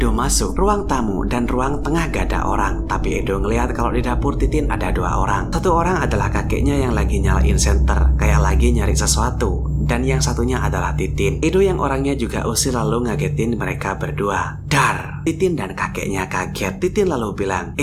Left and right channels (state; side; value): identical; both; correlation 1.00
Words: masuk, ruang tamu dan ruang tengah gak ada orang, tapi Edo ngelihat kalau di dapur Titin ada 2 orang. Satu orang adalah kakeknya yang lagi nyalain senter, kayak lagi nyari sesuatu, dan yang satunya adalah Titin. Edo yang orangnya juga usil lalu ngagetin mereka berdua. Dar! Titin dan kakeknya kaget. Titin lalu bilang,